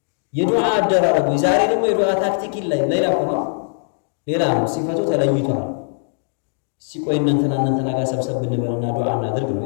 የዱዓ አደራረጉ ዛሬ ደግሞ የዱዓ ታክቲክ ሌላ ሆኖ ሌላ ነው። ሲፈቱ ተለይቷል። ሲቆይ እንትና ጋር ሰብሰብ ብንበልና ዱዓ እናድርግ ነው።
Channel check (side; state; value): right; silent; 66 dB below the other